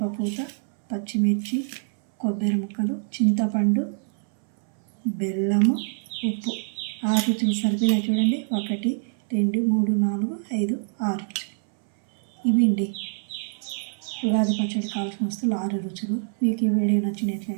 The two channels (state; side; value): silent; left; 61 dB below the other